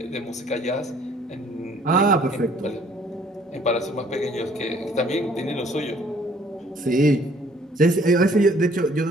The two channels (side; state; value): both; normal; correlation 0.59